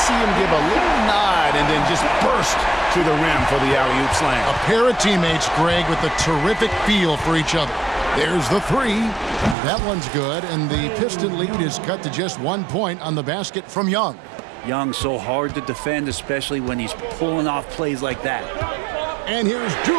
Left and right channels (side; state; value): left; drops out; at 9.6 s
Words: him give a little nod and then just burst to the rim for the alley-oop slam. A pair of teammates, Greg, with a terrific feel for each other. There's the 3. That one's good, and the Piston lead is cut to just 1 point on the basket from Young. Young so hard to defend, especially when he's pulling off plays like that. And here's